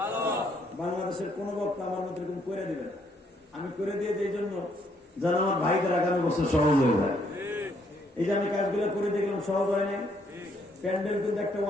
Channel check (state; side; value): normal; both; correlation 0.70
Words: বাংলাদেশের কোন বক্তা আমার মতো এরকম করে দিবেন, আমি করে দিয়ে এই জন্য যেন আমার ভাইদের আগামী বছর সহজ হয়ে যায়। এই যে আমি কাজগুলো করে দেখলাম, সহজ হয় নাই। প্যান্ডেল কিন্তু একটা